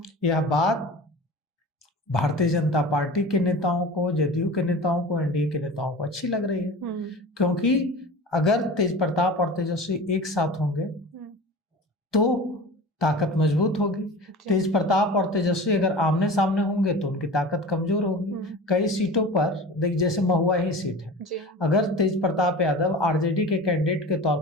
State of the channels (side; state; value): both; normal; correlation 0.35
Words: यह बात भारतीय जनता पार्टी के नेताओं को, जदयू के नेताओं को, एनडीए के नेताओं को अच्छी लग रही है, क्योंकि अगर तेज प्रताप और तेजस्वी एक साथ होंगे तो ताकत मजबूत होगी। तेज प्रताप और तेजस्वी अगर आमने सामने होंगे तो उनकी ताकत कमजोर होगी। कई सीटों पर देख, जैसे महुआ ही सीट है, अगर तेज प्रताप यादव आरजेडी के कैंडिडेट के तौर